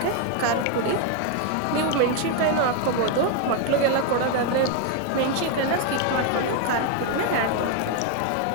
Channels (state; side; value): different; both; correlation 0.01